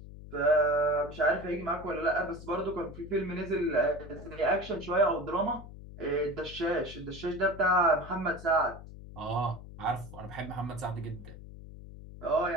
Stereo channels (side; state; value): left; noise; hum, 14 dB below the sound